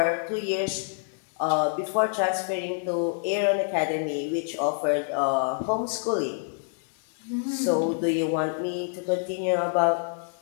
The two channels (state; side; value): silent; right; 60 dB below the other